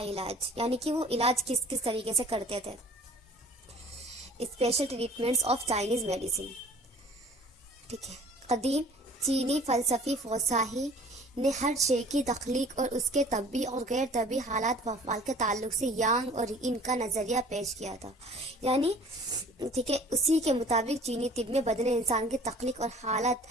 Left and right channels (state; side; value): normal; both; correlation 0.49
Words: علاج، یعنی کہ وہ علاج کس کس طریقے سے کرتے تھے. Special treatments of Chinese medicine. ٹھیک ہے. قدیم چینی فلسفی فوساہی نے ہر شے کی تخلیق اور اس کے طبی اور غیر طبی حالات و افعال کے تعلق سے یانگ اور ان کا نظریہ پیش کیا تھا. یعنی ٹھیک ہے، اسی کے مطابق چینی طب میں بدن انسان کی تخلیق اور حالت